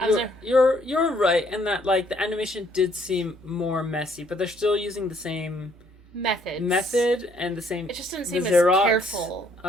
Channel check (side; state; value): both; normal; correlation 0.66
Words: You're right in that like the animation did seem more messy, but they're still using the same method and the same it just didn't seem as Xerox, careful